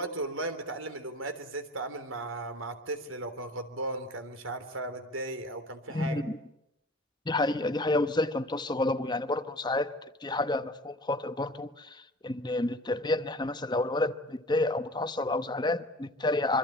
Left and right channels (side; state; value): both; normal; correlation 0.42